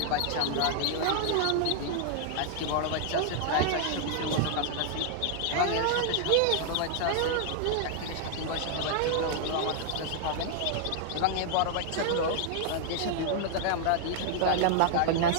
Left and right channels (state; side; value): different; both; correlation 0.00